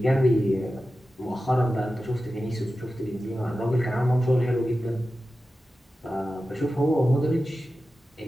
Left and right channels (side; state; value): both; normal; correlation 0.93